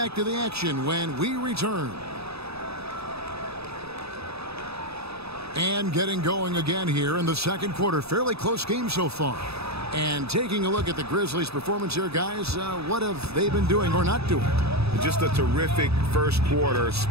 to the action when we return. And getting going again here in the second quarter. Fairly close game so far. And taking a look at the Grizzlies' performance here, guys, what have they been doing or not doing? Just a terrific first quarter,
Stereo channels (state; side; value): late; left; 0.78 ms